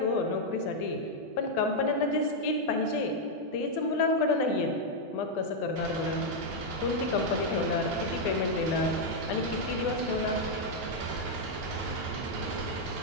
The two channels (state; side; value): normal; both; correlation -0.02